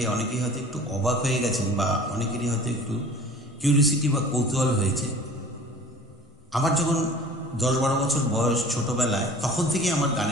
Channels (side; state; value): both; normal; correlation 0.45